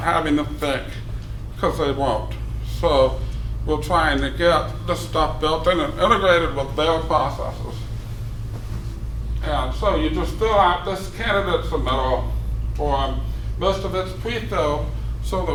having to think? Because they won't. So we're trying to get this stuff built in and integrated with their processes. And so you just fill out this candidate submittal form. Most of it's pre-filled so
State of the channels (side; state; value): both; identical; correlation 1.00